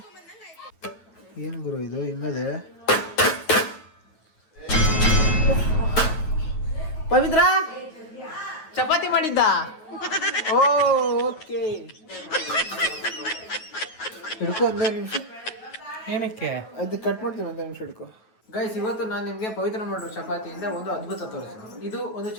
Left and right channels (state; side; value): late; right; 9.3 ms